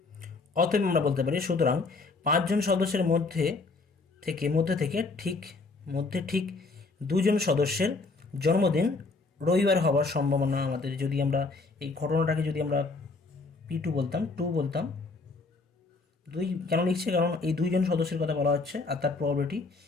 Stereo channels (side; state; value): right; quieter; 3.8 dB